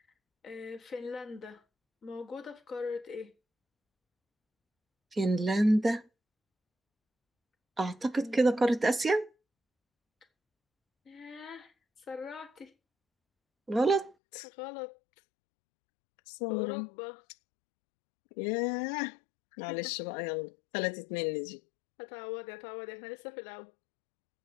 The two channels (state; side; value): drops out; right; at 14.2 s